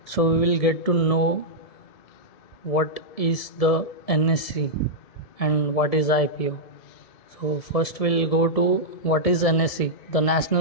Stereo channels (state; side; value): late; right; 1.7 ms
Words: So we will get to know what is the NSE and what is IPO. So first we'll go to what is NSE. The